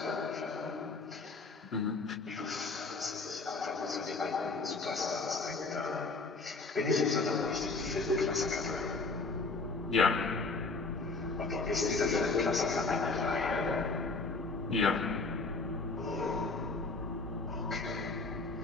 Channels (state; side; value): quieter; right; 3.7 dB